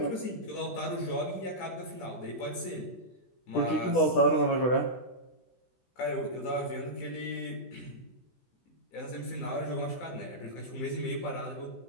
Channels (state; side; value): late; right; 16 ms